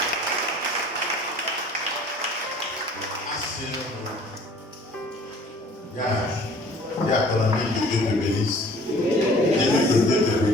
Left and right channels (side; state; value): both; normal; correlation 0.51